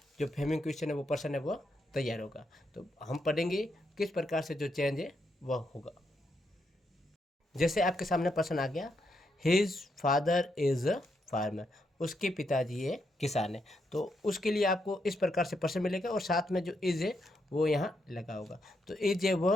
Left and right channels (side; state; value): both; normal; correlation 0.80